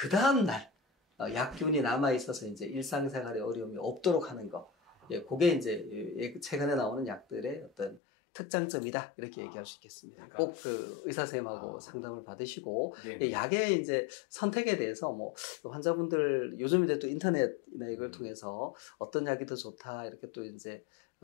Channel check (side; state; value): right; drops out; at 8.0 s